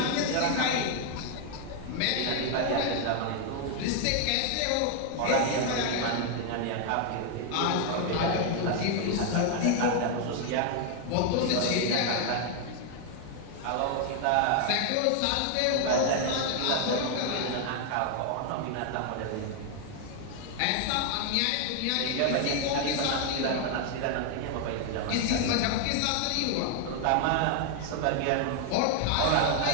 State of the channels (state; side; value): different; both; correlation 0.00